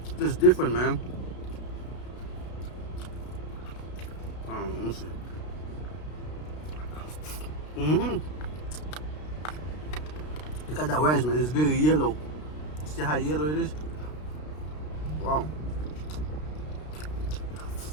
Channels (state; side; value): late; right; 33 ms